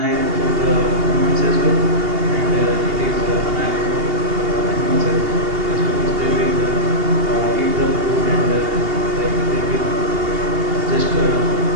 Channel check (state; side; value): late; left; 2.8 ms